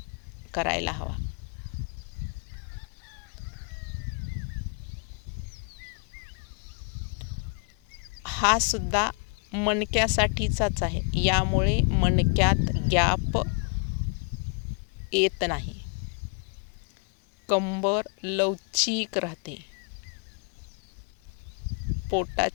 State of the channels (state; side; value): quieter; right; 38.4 dB